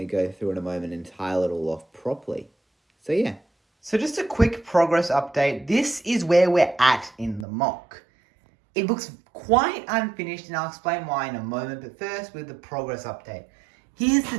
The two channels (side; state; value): left; drops out; at 7.5 s